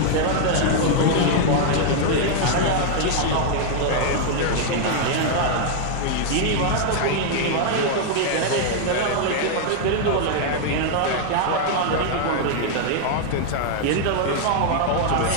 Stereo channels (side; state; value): both; different; correlation 0.00